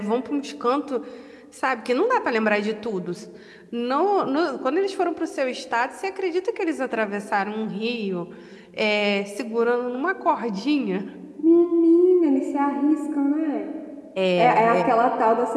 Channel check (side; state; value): both; identical; correlation 1.00